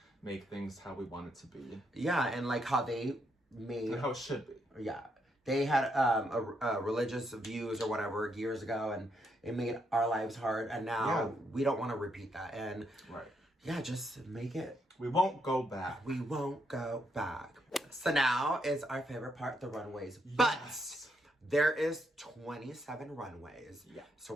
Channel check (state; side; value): normal; both; correlation 0.77